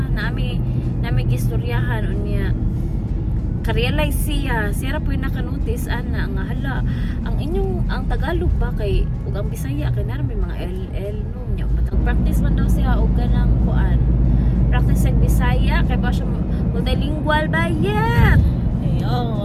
nami gistoryahan unya. Ka-realize siya ra po yung nakanotice ana nga hala ang Tagalog ba kay ug ang Bisaya kay na may mga LL no nya matag practice man daw siya og ganang kuan practice sa Bisaya kay ba siya multilingual ba yet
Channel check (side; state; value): both; identical; correlation 1.00